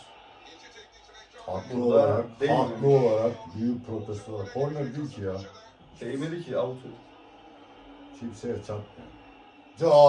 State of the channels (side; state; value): both; identical; correlation 1.00